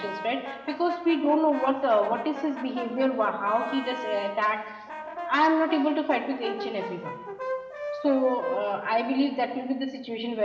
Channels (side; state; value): both; identical; correlation 1.00